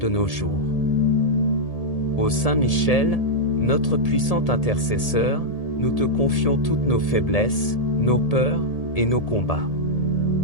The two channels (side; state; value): right; late; 1.8 ms